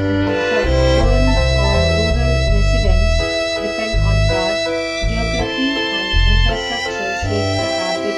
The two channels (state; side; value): identical; both; correlation 1.00